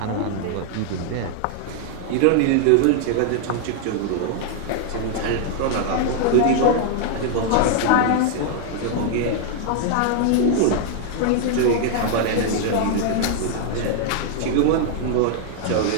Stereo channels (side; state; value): both; different; correlation 0.00